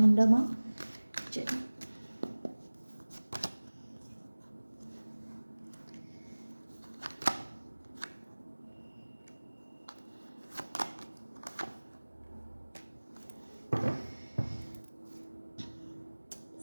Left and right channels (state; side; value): inverted; both; correlation -1.00